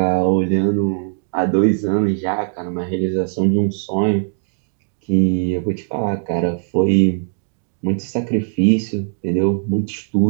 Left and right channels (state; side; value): silent; left; digital silence